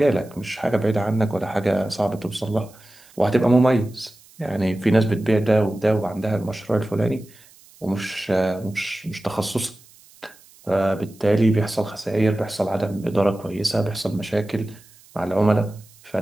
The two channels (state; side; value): noise; right; hiss, 26 dB below the sound